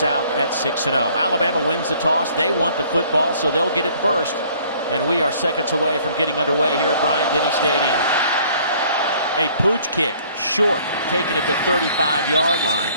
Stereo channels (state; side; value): inverted; both; correlation -0.57